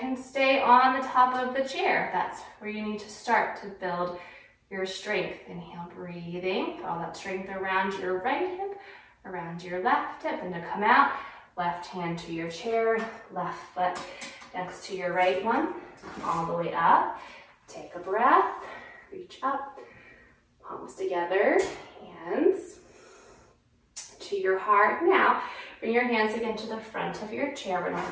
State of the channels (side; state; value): both; identical; correlation 1.00